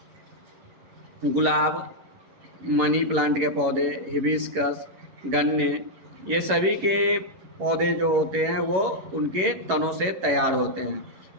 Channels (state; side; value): late; left; 11 ms